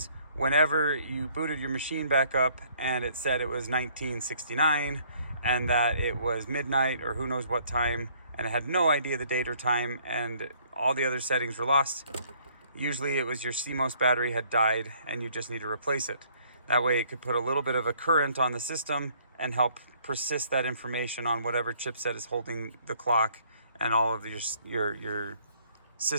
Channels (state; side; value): inverted; both; correlation -0.62